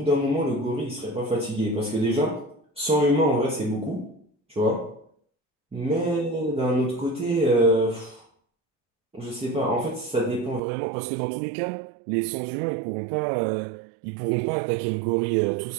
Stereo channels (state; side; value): drops out; left; at 10.6 s